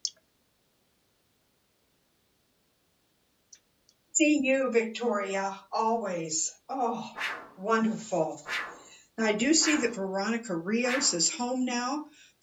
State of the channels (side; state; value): both; identical; correlation 1.00